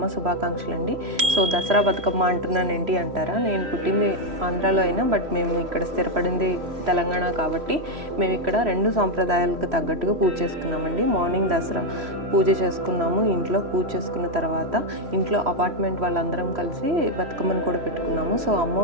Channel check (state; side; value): late; left; 3.1 ms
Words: శుభాకాంక్షలు అండి. సో దసరా బతుకమ్మ అంటున్నాను ఏంటి అంటారా, నేను పుట్టింది ఆంధ్రాలో అయినా బట్ మేము ఇక్కడ స్థిరపడింది తెలంగాణ కాబట్టి మేము ఇక్కడ రెండు సాంప్రదాయాలకు తగ్గట్టుగా పూజ చేసుకున్నామండి. మార్నింగ్ దసరా పూజ చేసుకున్నాము, ఇంట్లో పూజ చేసుకున్న తర్వాత ఇంట్లో అపార్ట్మెంట్ వాళ్ళందరం కలిసి బతుకమ్మను కూడా పెట్టుకున్నాము. సో